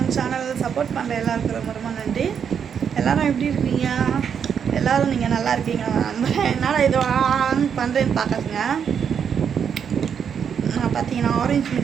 channel. Support பண்ணுற எல்லாருக்கும் ரொம்ப ரொம்ப நன்றி. எல்லோரும் எப்படி இருக்கீங்க? எல்லோரும் நீங்கள் நல்லா இருக்கீங்க. என்னால் இது ஆன் பண்ணுறேன்னு பார்க்காதுங்க. நான் பார்த்தீங்கன்னா ஆரஞ்சு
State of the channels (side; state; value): left; quieter; 7.5 dB